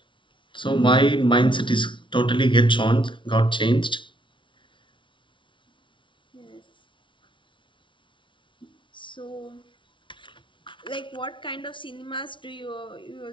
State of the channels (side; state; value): right; late; 0.24 ms